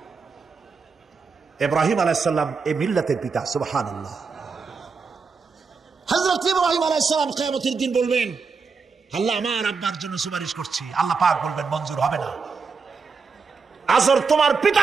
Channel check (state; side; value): quieter; left; 5.0 dB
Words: ইব্রাহিম আলাইহিস সালাম এই মিল্লাতের পিতা। সুবহানাল্লাহ। হযরত ইব্রাহিম আলাইহিস সালাম কিয়ামতের দিন বলবেন, আল্লাহ আমার আব্বার জন্য সুপারিশ করছি। আল্লাহ পাক বলবেন মঞ্জুর হবে না। আজর তোমার পিতা